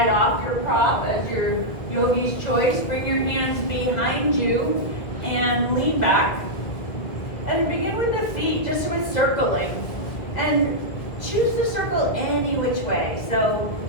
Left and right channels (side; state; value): right; late; 1.8 ms